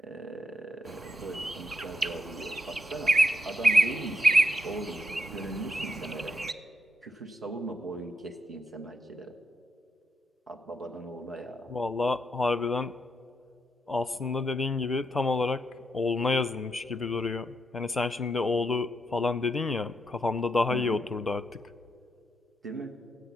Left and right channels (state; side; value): normal; both; correlation 0.82